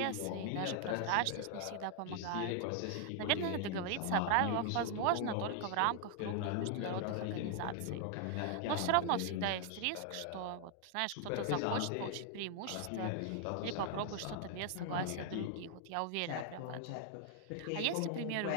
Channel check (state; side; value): different; both; correlation 0.00